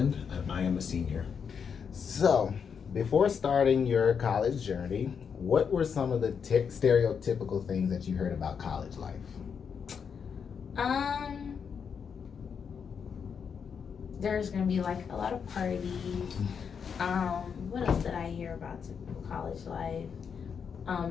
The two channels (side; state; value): right; quieter; 6.7 dB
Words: and I am a senior. So, before starting your college journey, what were some of the stereotypical things that you heard about college life? There's gonna be like a lot of parties. What else did I hear about typical college life?